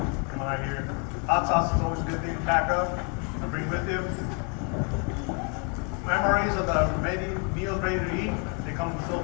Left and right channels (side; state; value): right; quieter; 37.4 dB